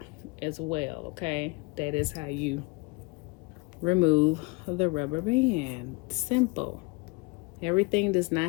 as well. Okay, that is how you remove the rubber band. Simple. Everything does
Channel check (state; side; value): quieter; right; 27.0 dB